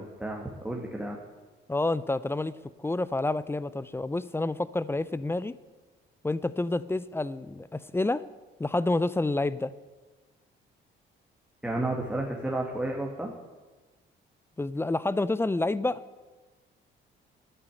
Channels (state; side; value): normal; both; correlation 0.88